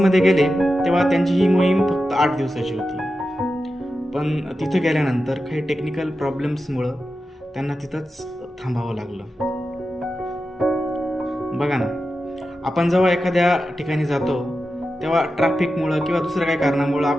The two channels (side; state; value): both; normal; correlation 0.91